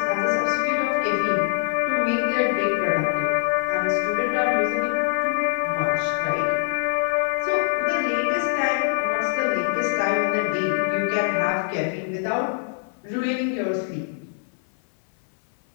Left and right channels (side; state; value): right; silent; 60 dB below the other